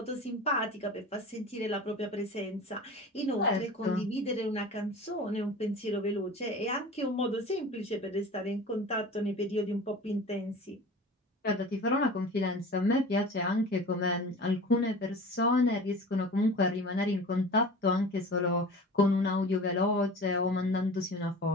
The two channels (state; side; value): normal; both; correlation 0.38